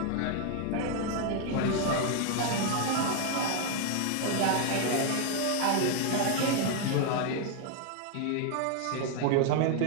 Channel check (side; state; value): both; different; correlation 0.01